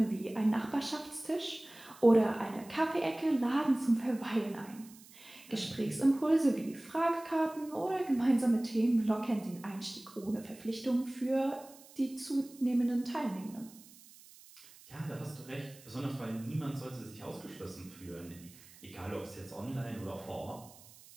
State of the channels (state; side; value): noise; right; hiss, 22 dB below the sound